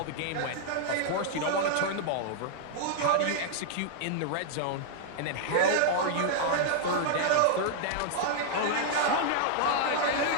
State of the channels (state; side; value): different; both; correlation -0.01